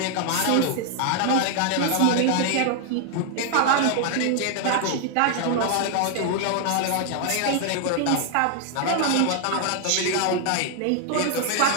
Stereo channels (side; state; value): both; different; correlation 0.00